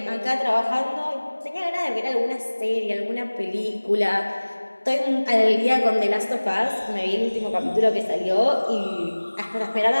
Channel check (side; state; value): both; inverted; correlation -1.00